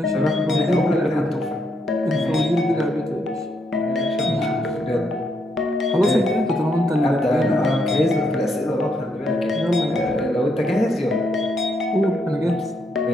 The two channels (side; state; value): both; normal; correlation 0.77